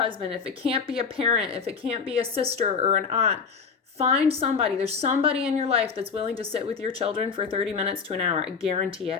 if it can't be a parent, if it can't be a sister or an aunt. Find somebody. There's somebody in your life that's willing to sit with your children for 30 minutes to an hour. I guarantee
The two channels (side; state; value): right; quieter; 5.6 dB